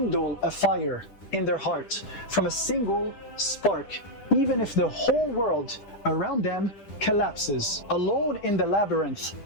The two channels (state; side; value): late; right; 10 ms